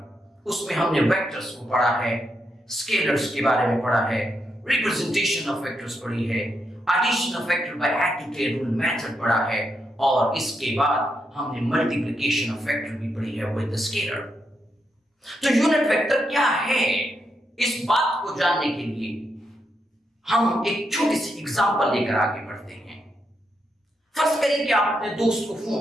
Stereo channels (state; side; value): normal; both; correlation 0.82